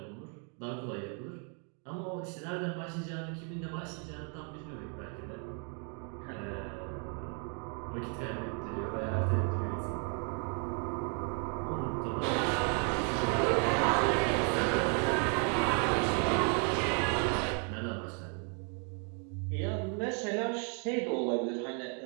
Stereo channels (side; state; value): left; quieter; 39.9 dB